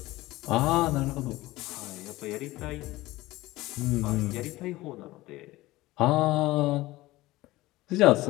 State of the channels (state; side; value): quieter; right; 18.4 dB